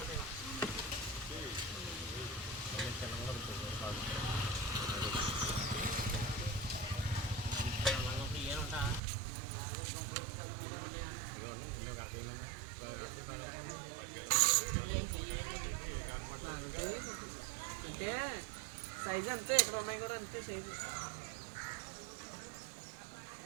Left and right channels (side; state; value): left; drops out; at 9.0 s